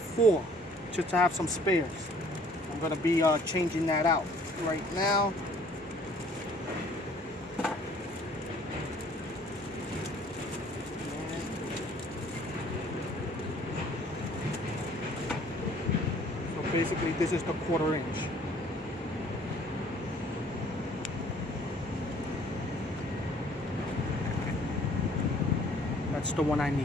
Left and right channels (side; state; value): both; normal; correlation 0.56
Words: just to have some spares. I'm gonna be changing that out right now. So basically this is the 1/4 inch. That's the one I